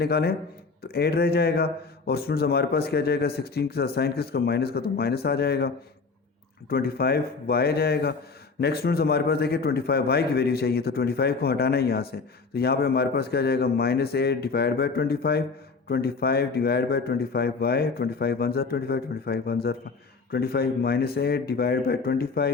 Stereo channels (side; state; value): right; quieter; 4.5 dB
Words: तो 8 रह जाएगा। और स्टूडेंट्स हमारे पास क्या जाएगा 16 के साथ साइन किसका माइनस का, तो माइनस आ जाएगा, 25y आ जाएगा। नेक्स्ट स्टूडेंट्स हमारे पास देखिए 25y की वैल्यू चाहिए, तो 25 को हटाना है यहाँ से, तो यहाँ पे हमारे पास क्या जाएगा minus 8 divide by 25, 25 divide by 25y, 25 1 ज़ा 25, 25 1 ज़ा 25 minus 8 divide by